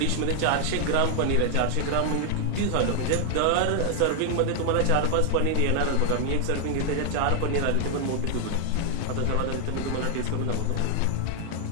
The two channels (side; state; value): both; different; correlation 0.00